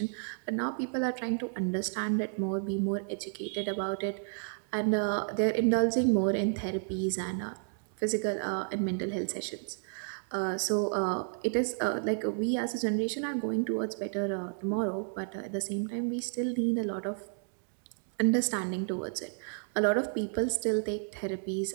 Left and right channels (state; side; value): silent; left; digital silence